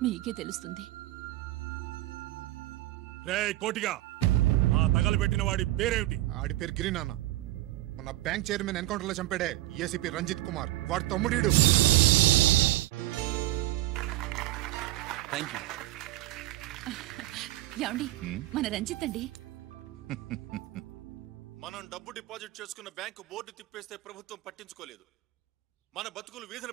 మీకే తెలుస్తుంది. రే కోటిగా, ఆ తగలబెట్టిన వాడి పేరేమిటి? ఆడి పేరు గిరి నాన్న. మన బ్యాంక్ చైర్మన్ ఎన్కౌంటర్ లో చంపాడే ఏసీపీ రంజిత్ కుమార్, వాడి తమ్ముడీడు. ఏమండి, మన రంజిత్ అండి. మనం డబ్బు డిపాజిట్ చేసుకున్న బ్యాంకు బోర్డు తిప్పేస్తే ప్రభుత్వం పట్టించుకోలేదు. మన బతుకులు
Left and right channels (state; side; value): quieter; left; 16.3 dB